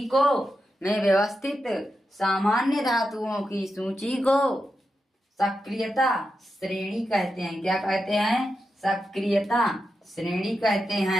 को, में व्यवस्थित सामान्य धातुओं की सूची को सक्रियता श्रेणी कहते हैं। क्या कहते हैं, सक्रियता श्रेणी कहते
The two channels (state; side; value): normal; both; correlation 0.88